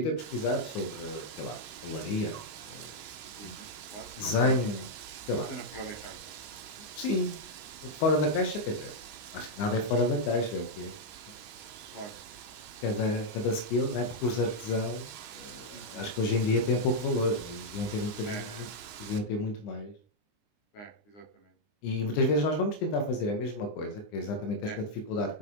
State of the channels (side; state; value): right; late; 19 ms